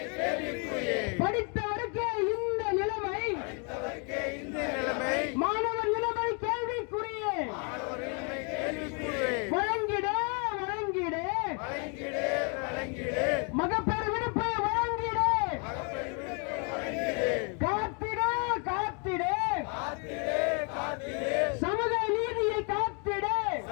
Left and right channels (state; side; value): quieter; right; 36.8 dB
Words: படித்தவருக்கே இந்த நிலைமை மாணவர் நிலைமை கேள்விக்குரிய வழங்கிட வழங்கிட மகப்பேறு விடுப்பை வழங்கிட காத்திட காத்திட சமூக நீதியை காத்திட